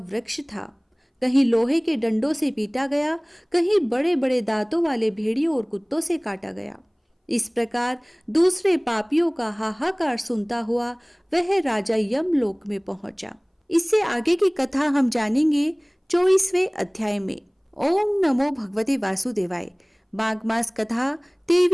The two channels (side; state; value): both; identical; correlation 1.00